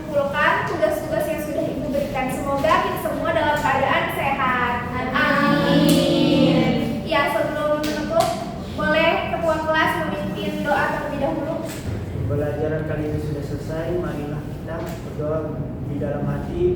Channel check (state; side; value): identical; both; correlation 1.00